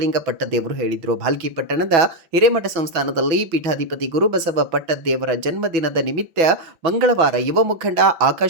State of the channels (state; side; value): late; left; 6.1 ms